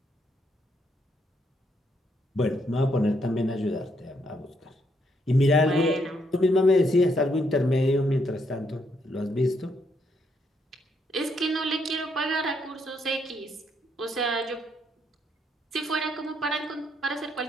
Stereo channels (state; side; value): normal; both; correlation 0.74